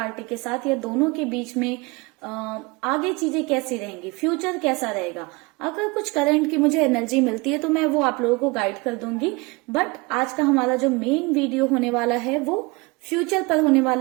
के साथ, या दोनों के बीच में आगे चीजें कैसी रहेंगी, फ्यूचर कैसा रहेगा। अगर कुछ करंट की मुझे एनर्जी मिलती है तो मैं वो आप लोगों को गाइड कर दूंगी, बट आज का हमारा जो मेन वीडियो होने वाला है वो फ्यूचर पर होने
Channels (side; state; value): left; quieter; 25.7 dB